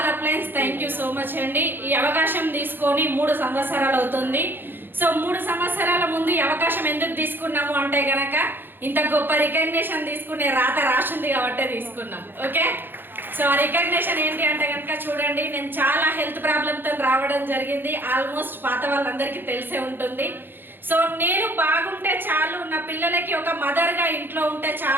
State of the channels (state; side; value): late; left; 0.098 ms